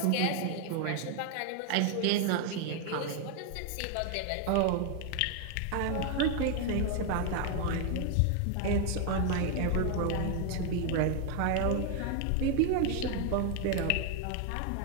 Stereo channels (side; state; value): both; different; correlation 0.01